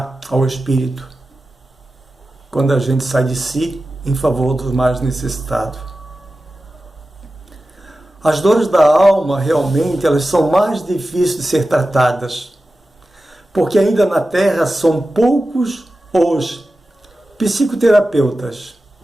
ao Espírito, quando a gente sai de si em favor dos mais necessitados. As dores da alma, realmente, elas são mais difíceis de ser tratadas, porque ainda na Terra são poucos os psicoterapeutas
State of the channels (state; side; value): normal; both; correlation 0.94